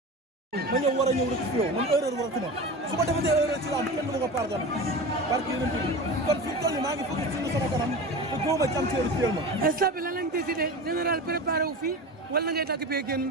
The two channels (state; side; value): normal; both; correlation 0.29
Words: ma ñëw war a ñëw rek ci yow man erreur waratuma su ma defatee erreur ci lamb kenn du ma ko pardonné barke yonent bi kon fi mu toll nii maa ngi fukki ci sama kanam te góoma ci am ci heure ma instant bi lan lañ décidé général préparé wu fii wala ngay dagg bee génn